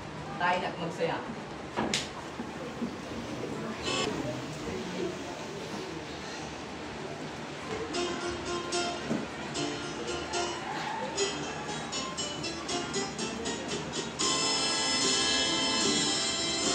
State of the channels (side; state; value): both; identical; correlation 1.00